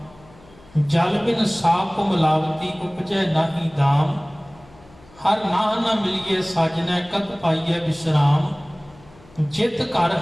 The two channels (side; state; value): left; noise; hum, 25 dB below the sound